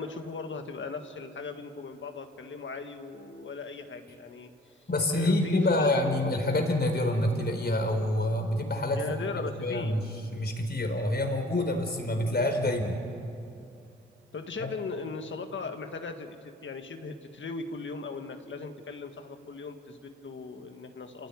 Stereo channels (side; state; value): both; normal; correlation 0.50